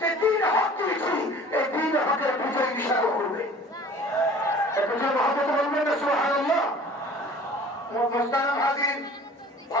যে দিন হক দিয়েছি, এই দিন হকের বিজয় ইশারা করবে।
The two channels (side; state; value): both; normal; correlation 0.47